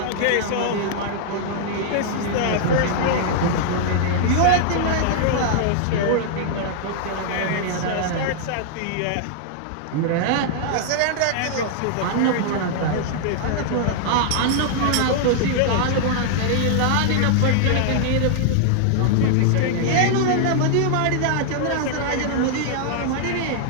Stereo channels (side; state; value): both; different; correlation -0.01